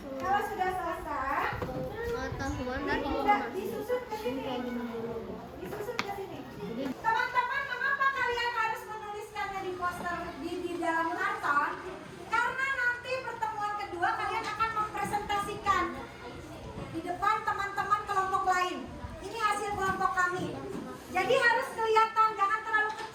kalau sudah selesai, Pengetahuan udah disusun ke sini. Disusun ke sini. Teman-teman, mengapa kalian harus menuliskannya di poster di dalam karton? Karena nanti pertemuan kedua kalian akan mempresentasikan di depan teman-teman kelompok lain. Ini hasil kelompok kami. Jadi harus kelihatan, jangan terlalu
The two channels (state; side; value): identical; both; correlation 1.00